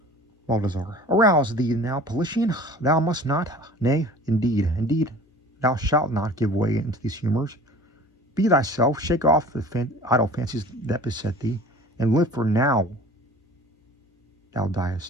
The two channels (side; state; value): both; normal; correlation 0.44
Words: Arouse thee now, Politian. Thou must not. Nay, indeed, thou shalt not give way into these humors. Be thyself, shake off the idle fancies that beset thee, and live, for now thou